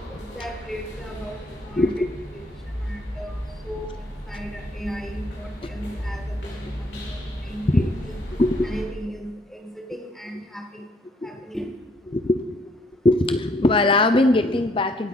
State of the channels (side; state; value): both; normal; correlation 0.66